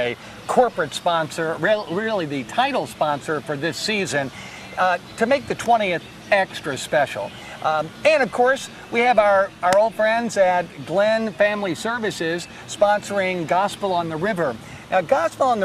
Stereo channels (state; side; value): identical; both; correlation 1.00